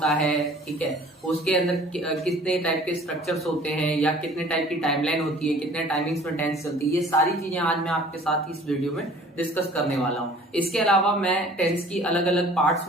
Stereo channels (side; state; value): both; normal; correlation 0.50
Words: है। ठीक है, उसके अंदर कितने टाइप के स्ट्रक्चर्स होते हैं या कितने टाइप की टाइमलाइन होती है, कितने टाइमिंग्स में टेंस चलती है, ये सारी चीजें आज मैं आपके साथ इस वीडियो में डिस्कस करने वाला हूँ। इसके अलावा मैं टेंस की अलग अलग पार्ट्स